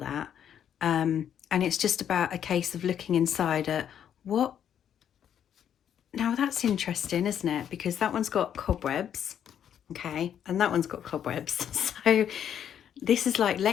And it's just about a case of looking inside at what. Now that's interesting, isn't it? Because that one's got cobwebs, okay? And that one's got cobwebs. So this is like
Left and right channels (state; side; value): quieter; right; 9.2 dB